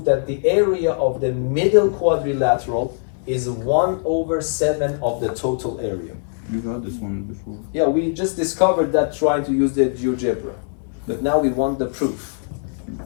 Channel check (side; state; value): right; silent; 65 dB below the other